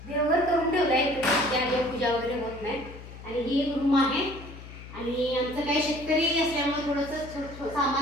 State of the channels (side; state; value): left; noise; hum, 15 dB below the sound